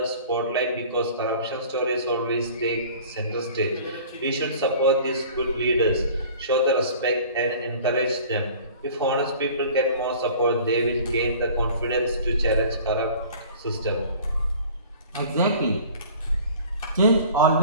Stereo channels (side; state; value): both; inverted; correlation -0.45